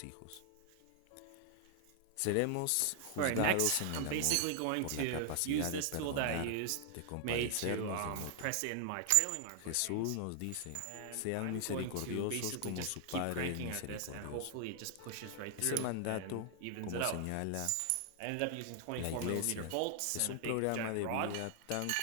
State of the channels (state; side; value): different; both; correlation 0.00